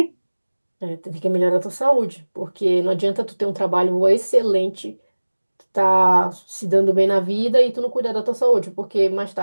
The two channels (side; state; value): both; inverted; correlation -1.00